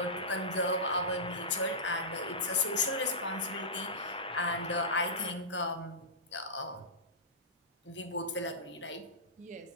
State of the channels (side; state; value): both; normal; correlation -0.18